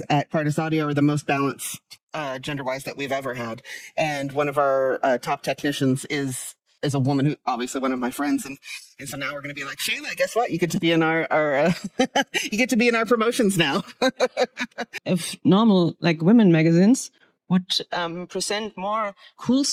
at Cardas Audio are the most balanced gender-wise that we've ever had. And one of our top technicians is a woman who, obviously one of my friends. And so now we're going to be like, Shayla, guess what? You get to be in our you get to be in our promotions now. If normal, women magazines would present more cool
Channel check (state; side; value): identical; both; correlation 1.00